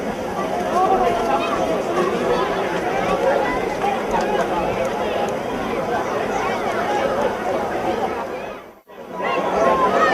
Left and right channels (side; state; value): both; identical; correlation 1.00